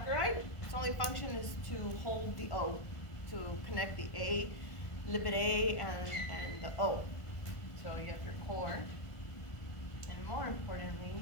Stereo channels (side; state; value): right; late; 1.5 ms